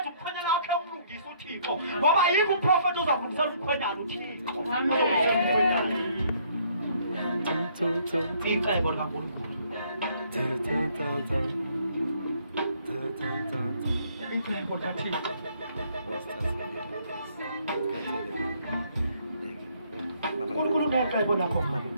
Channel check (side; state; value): both; inverted; correlation -0.65